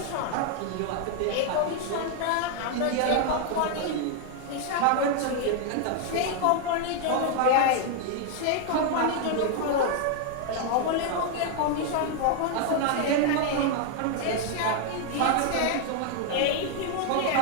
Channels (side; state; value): both; different; correlation 0.00